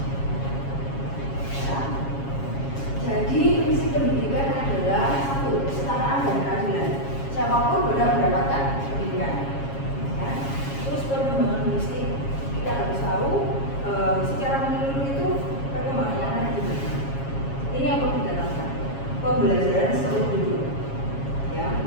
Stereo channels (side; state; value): right; late; 7.3 ms